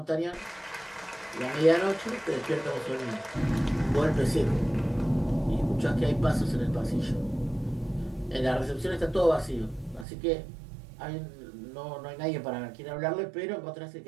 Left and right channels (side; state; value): left; drops out; at 10.1 s